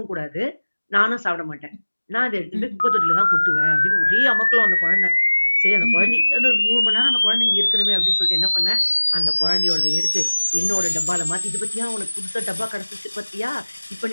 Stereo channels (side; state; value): both; inverted; correlation -1.00